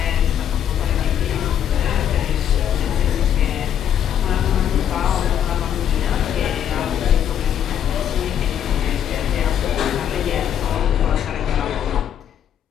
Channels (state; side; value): quieter; right; 9.6 dB